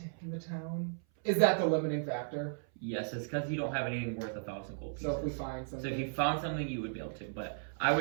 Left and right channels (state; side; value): silent; left; 54 dB below the other